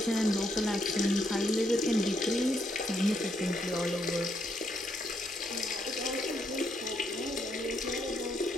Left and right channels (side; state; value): both; normal; correlation 0.75